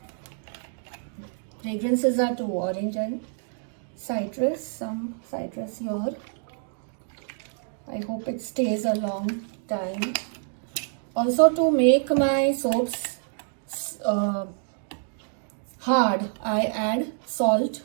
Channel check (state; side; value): silent; left; 60 dB below the other